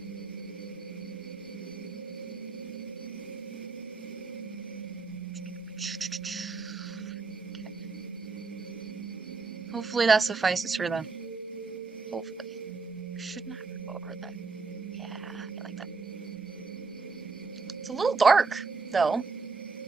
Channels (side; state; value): left; quieter; 4.5 dB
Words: Hopefully that suffices for them. Hopefully. Shouldn't have to go over that. Yeah, I like that. It's a little dark, though.